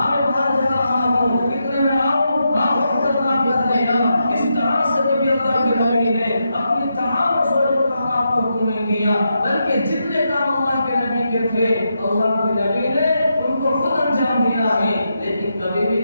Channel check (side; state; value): both; inverted; correlation -0.84